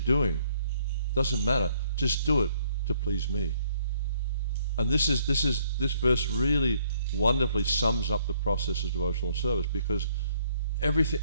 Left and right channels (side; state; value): both; inverted; correlation -0.66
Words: doesn't matter. Just do it to please me. And this verse really wonderfully sums up the process of devotional service, because